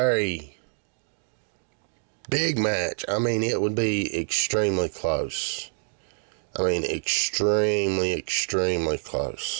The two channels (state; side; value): silent; left; digital silence